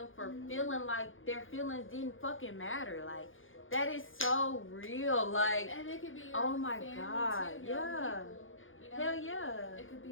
for feeling like their feelings didn't fucking matter. Like, that is so real. Like, and it could be your oh my family God, too, yeah. People, you know? Hell yeah. It could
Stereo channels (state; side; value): late; right; 0.58 ms